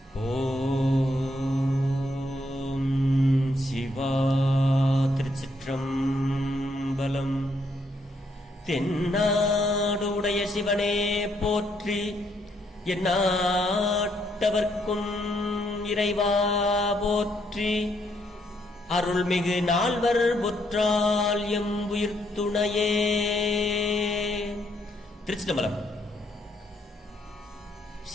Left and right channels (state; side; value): normal; both; correlation 0.73